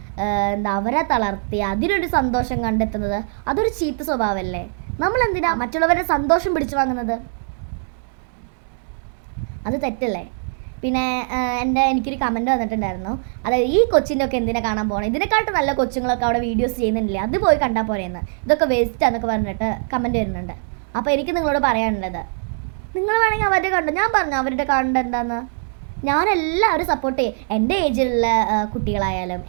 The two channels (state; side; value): silent; left; digital silence